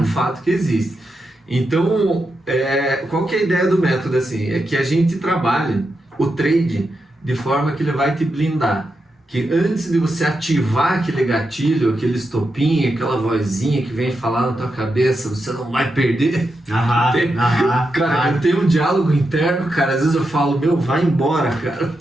fato que existe. Então, qual que é a ideia do método, assim? É que a gente trabalhe o trade de forma que ele vai te blindar. Que antes de você ativar aquele gatilho, aquele estopinho, aquela vozinha que vem falar na tua cabeça, você não vai perder. Cara, eu tenho um diálogo interno, cara, às vezes eu falo, vai embora, cara.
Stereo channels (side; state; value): both; normal; correlation 0.86